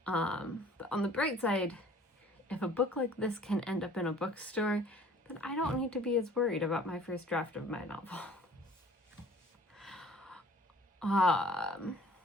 But on the bright side, if a book like this can end up in a bookstore, then I don't need to be as worried about my first draft of my novel.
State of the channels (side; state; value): both; normal; correlation 0.51